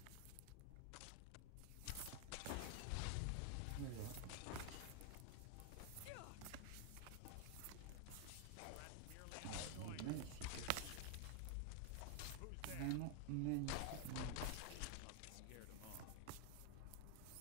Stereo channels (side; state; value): both; different; correlation 0.00